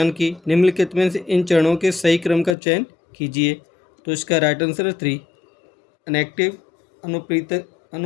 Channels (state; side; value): drops out; right; at 2.6 s